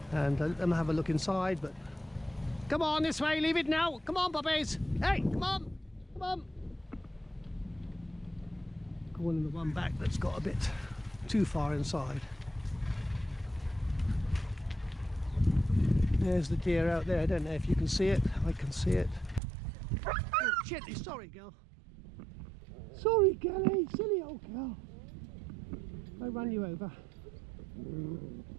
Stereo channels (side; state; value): left; drops out; at 19.4 s